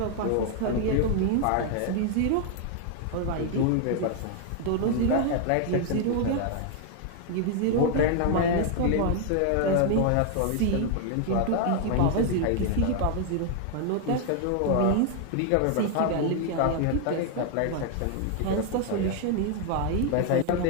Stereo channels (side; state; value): both; different; correlation 0.00